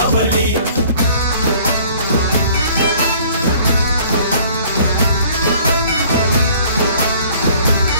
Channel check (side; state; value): both; inverted; correlation -0.54